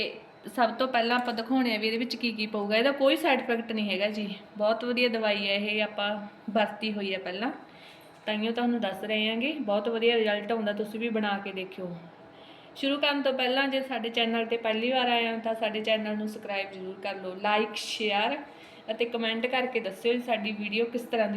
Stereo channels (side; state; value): both; identical; correlation 1.00